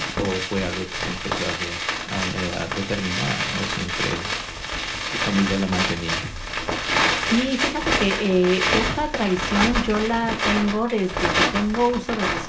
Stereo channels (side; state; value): both; identical; correlation 1.00